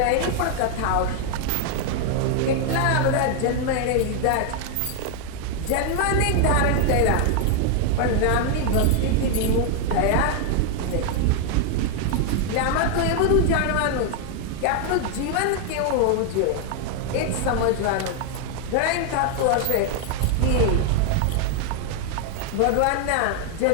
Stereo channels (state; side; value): different; both; correlation 0.00